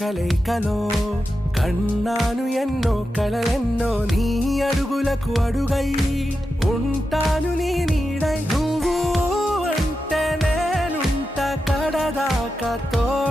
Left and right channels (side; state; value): both; normal; correlation 0.90